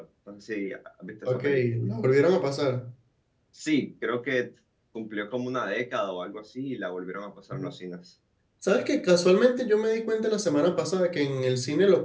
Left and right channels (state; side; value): identical; both; correlation 1.00